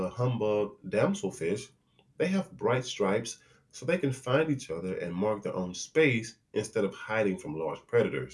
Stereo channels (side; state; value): both; identical; correlation 1.00